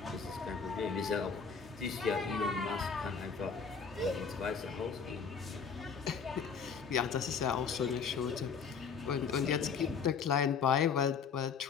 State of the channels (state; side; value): quieter; right; 6.1 dB